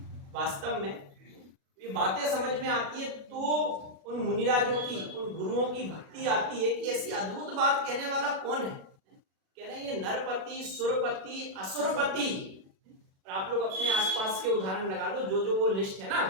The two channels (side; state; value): left; late; 37 ms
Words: वास्तव में ये बातें समझ में आती है तो उन मुनिराजों की, उन गुरुओं की भक्ति आती है कि ऐसी अद्भुत बात कहने वाला कौन है। कह रहे हैं ये नरपति सुरपति असुरपति। और आप लोग अपने आसपास के उदाहरण लगा लो, जो वो लिस्ट है ना